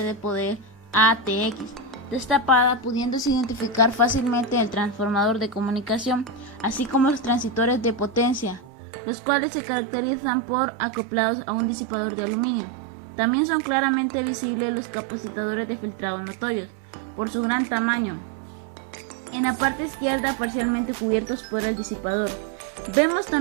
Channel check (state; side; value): drops out; left; at 8.7 s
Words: de poder ATX destapada, pudiéndose identificar fácilmente el transformador de comunicación, así como los transitores de potencia, los cuales se caracterizan por acoplados a un disipador de aluminio. También son claramente visibles los capacitadores de filtrado notorios, por su gran tamaño. En la parte izquierda parcialmente cubiertos por el disipador. Vemos